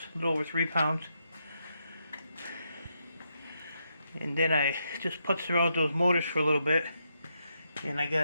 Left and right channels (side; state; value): both; inverted; correlation -0.81